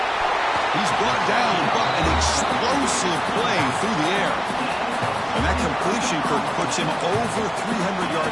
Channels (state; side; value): identical; both; correlation 1.00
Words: He's brought down, but an explosive play through the air. And that completion, Kirk, puts him over 300